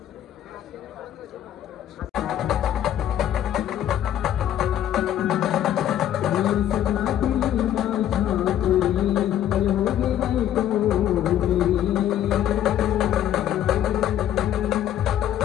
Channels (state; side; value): quieter; right; 11.1 dB